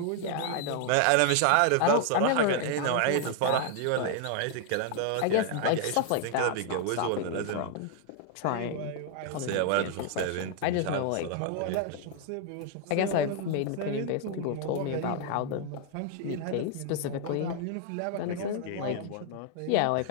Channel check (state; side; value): different; both; correlation 0.00